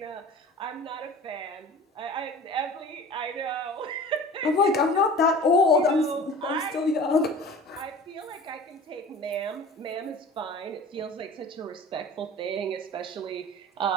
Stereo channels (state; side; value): normal; both; correlation 0.40